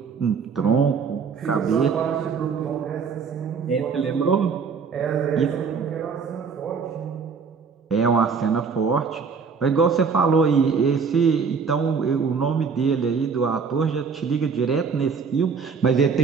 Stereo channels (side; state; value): left; quieter; 5.6 dB